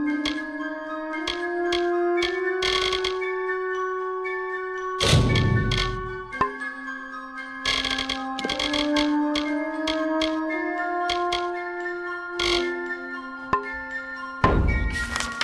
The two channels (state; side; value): identical; both; correlation 1.00